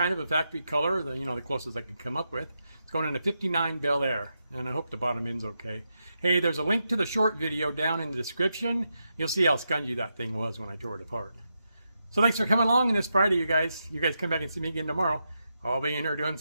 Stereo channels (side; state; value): both; inverted; correlation -0.85